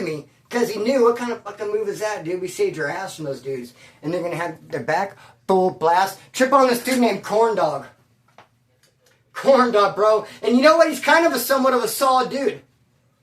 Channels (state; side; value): identical; both; correlation 1.00